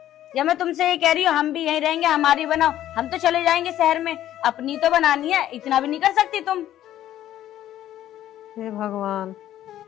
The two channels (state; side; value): quieter; right; 12.5 dB